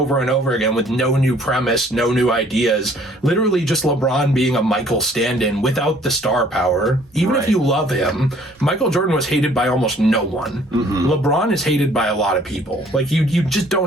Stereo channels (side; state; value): both; normal; correlation 0.58